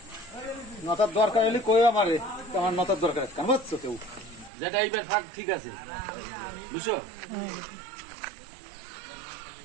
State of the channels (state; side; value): drops out; left; at 4.5 s